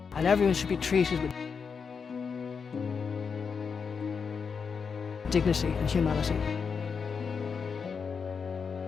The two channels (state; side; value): quieter; right; 5.9 dB